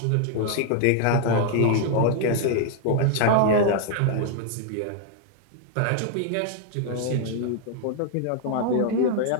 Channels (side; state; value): both; different; correlation 0.00